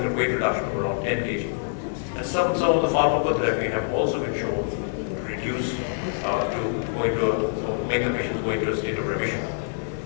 a weight reduction of around 10 kg. And some of the pharmacotherapy have also been shown to reduce, make the patients go into a state of remission.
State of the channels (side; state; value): right; silent; digital silence